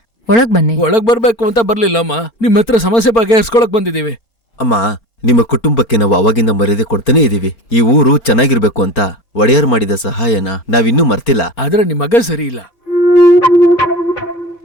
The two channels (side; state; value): right; late; 4.4 ms